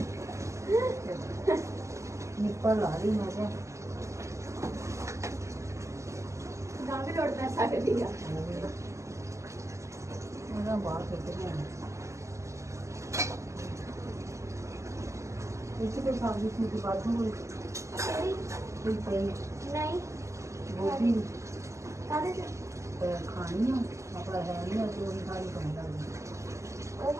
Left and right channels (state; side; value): late; left; 0.14 ms